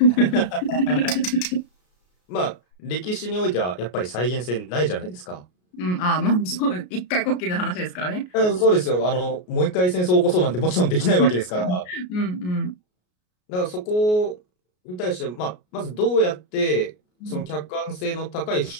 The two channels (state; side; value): late; right; 33 ms